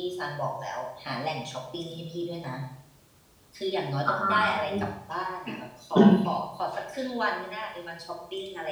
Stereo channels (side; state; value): both; identical; correlation 1.00